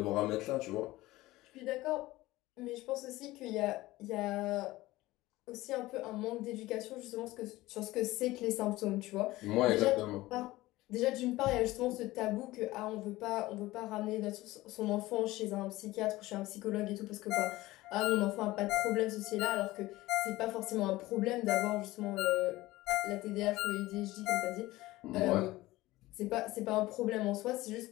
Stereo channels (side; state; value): right; quieter; 18.3 dB